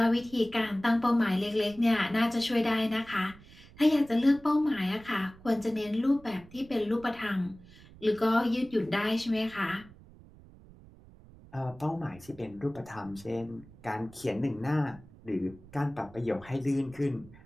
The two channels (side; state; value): right; noise; rumble, 22 dB below the sound